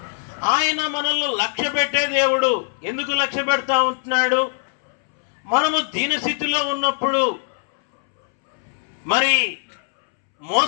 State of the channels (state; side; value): silent; right; 65 dB below the other